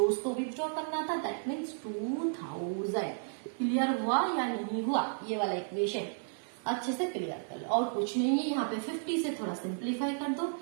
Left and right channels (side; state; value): left; silent; 56 dB below the other